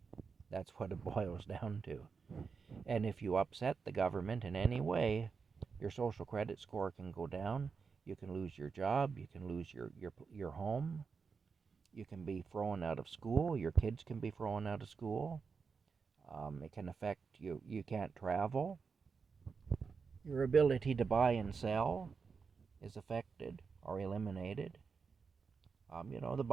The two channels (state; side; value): quieter; left; 5.3 dB